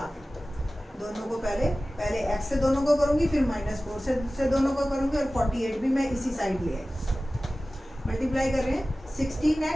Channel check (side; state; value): both; normal; correlation 0.96